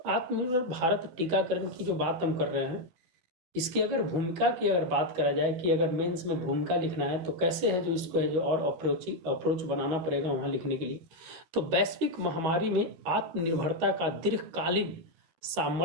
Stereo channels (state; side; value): late; left; 12 ms